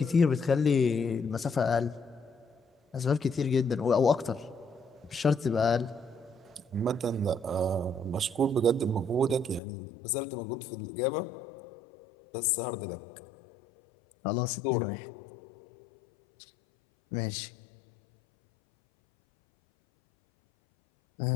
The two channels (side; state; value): right; drops out; at 9.6 s